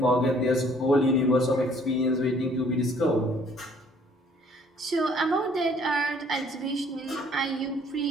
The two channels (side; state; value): both; normal; correlation 0.59